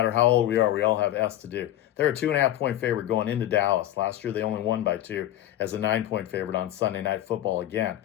how old we are, we all have S to do. They're a 2.5-point favorite going into Dallas. Last year, they only won by 2 as a 9-point favorite on Sunday Night Football again.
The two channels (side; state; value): right; quieter; 13.0 dB